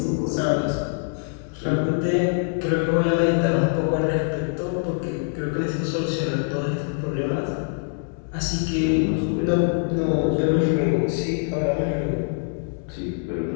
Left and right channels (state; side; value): silent; right; digital silence